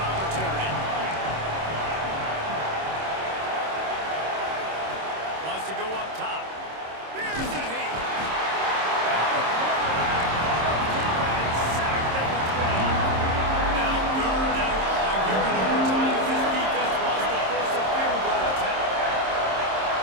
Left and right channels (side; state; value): left; late; 26 ms